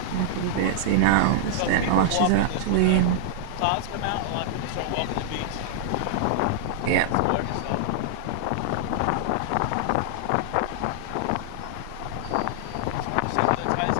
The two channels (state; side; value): different; both; correlation -0.01